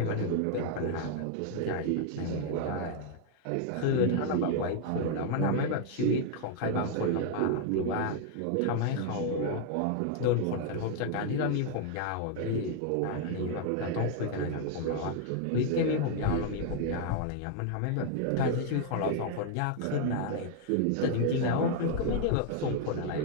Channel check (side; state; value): both; different; correlation 0.00